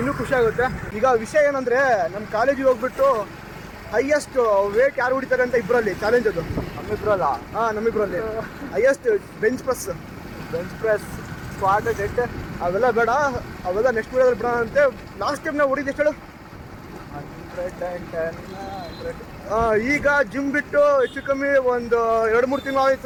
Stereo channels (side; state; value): both; identical; correlation 1.00